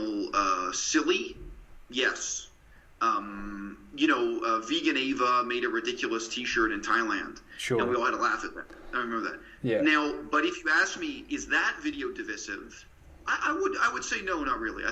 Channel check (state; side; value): identical; both; correlation 1.00